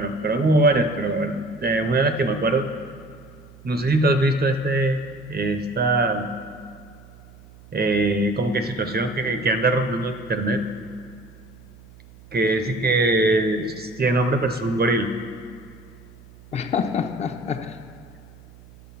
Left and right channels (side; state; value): right; noise; hum, 23 dB below the sound